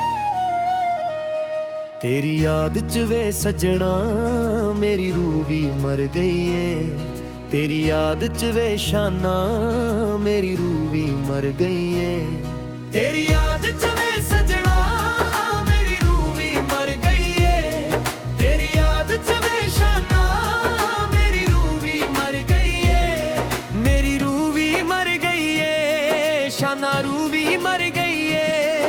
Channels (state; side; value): identical; both; correlation 1.00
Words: तेरी याद च वे सजना मेरी रूह भी मर गई है। तेरी याद च वे शाना मेरी रूह भी मर गई है। तेरी याद च वे सजना मेरी रूह भी मर गई है। तेरी याद च वे शाना मेरी रूह भी मर गई है। मेरी रूह भी मर गई है, शाना रूह भी मर गई है।